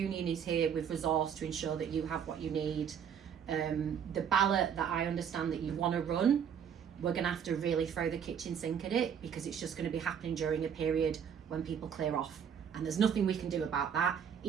is here with resource to ensure that you have what you need. The ballot that I understand that you want to run, we're going to have to really throw the kitchen sink at it, because it's just going to be happening during a period when people clear off, and there's nothing we can do about that.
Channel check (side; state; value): left; quieter; 7.9 dB